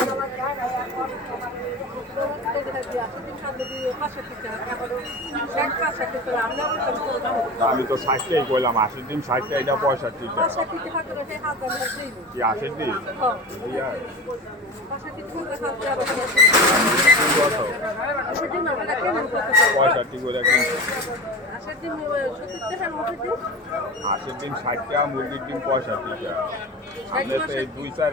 আমি তো 60 টাকাই কইলাম, 80 ডিম 60 টাকা, এটা 65 টাকা। কি 80 ডিম? ইয়া 65 করে কিনছি। 80 ডিম 60 টাকা, মুরগির ডিম 65 টাকা। আমরা তো এই 2-4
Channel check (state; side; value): normal; both; correlation 0.30